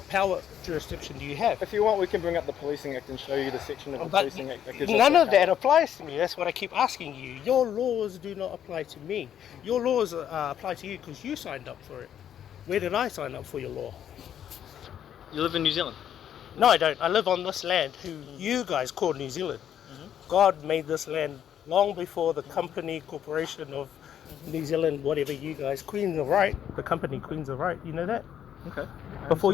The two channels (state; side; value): quieter; right; 9.8 dB